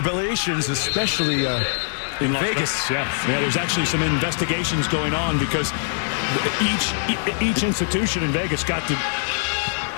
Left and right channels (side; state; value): right; silent; digital silence